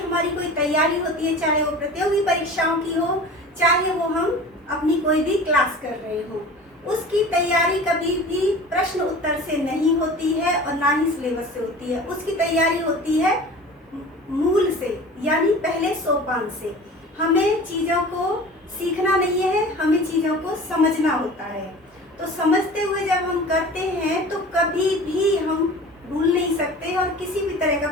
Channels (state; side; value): normal; both; correlation 0.39